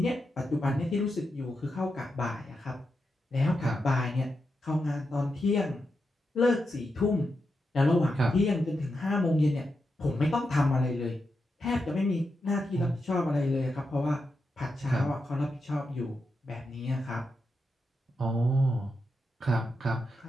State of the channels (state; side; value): normal; both; correlation 0.87